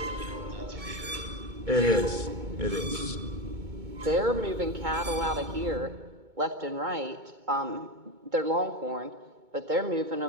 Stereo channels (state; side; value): late; left; 2.2 ms